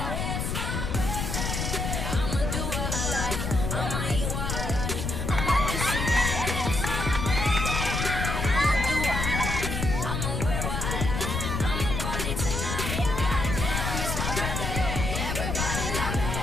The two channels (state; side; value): noise; left; rumble, 2 dB below the sound